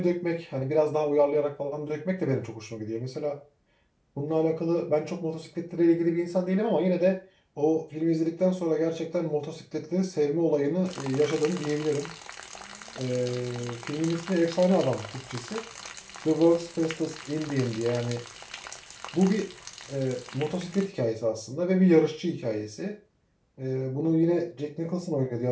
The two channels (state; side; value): identical; both; correlation 1.00